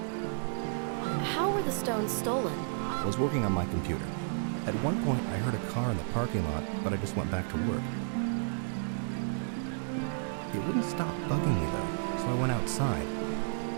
How were the stones stolen? I was working on my computer. At one point, I heard a car in the parking lot, but I just went back to work. It wouldn't stop bugging me, though, so I went outside.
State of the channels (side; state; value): left; silent; digital silence